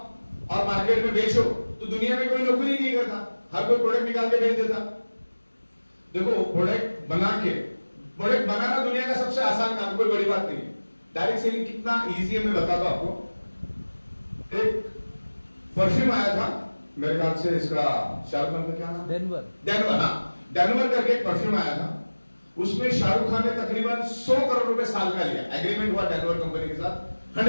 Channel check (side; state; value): both; inverted; correlation -1.00